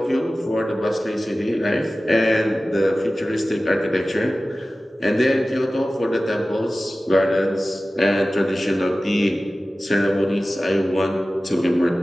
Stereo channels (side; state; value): both; normal; correlation 0.96